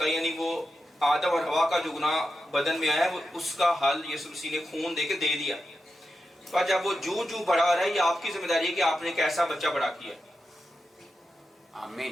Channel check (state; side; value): normal; both; correlation 0.89